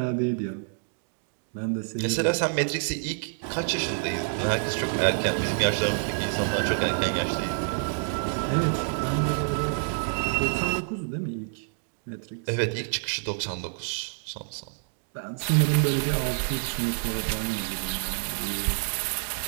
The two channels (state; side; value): silent; left; digital silence